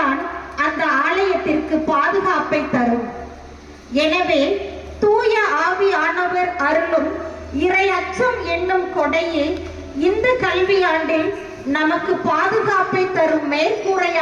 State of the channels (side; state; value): both; identical; correlation 1.00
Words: அந்த ஆலயத்திற்கு பாதுகாப்பை தரும். எனவே தூய ஆவியானவர் அருளும் இறை அச்சம் என்னும் கொடையே இந்த கல்வியாண்டில் நமக்கு பாதுகாப்பை தரும்